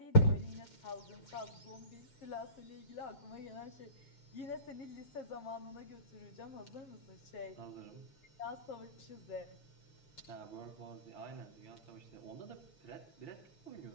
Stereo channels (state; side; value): late; right; 7.6 ms